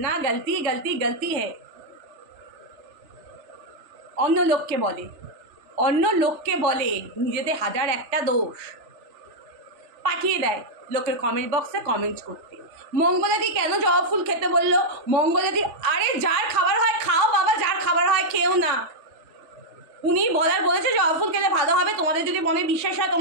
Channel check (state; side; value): late; left; 3.4 ms